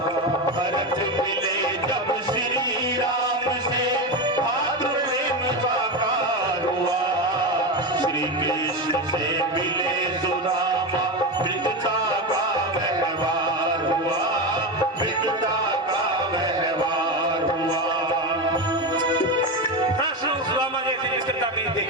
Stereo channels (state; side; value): normal; both; correlation 0.17